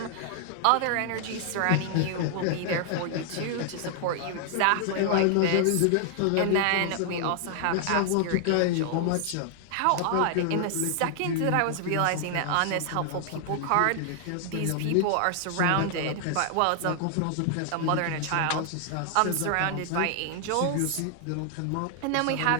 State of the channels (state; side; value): different; both; correlation 0.00